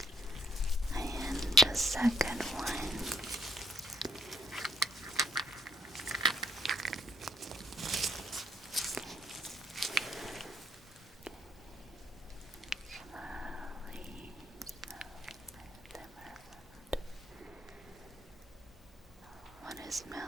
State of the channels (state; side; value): normal; both; correlation 0.67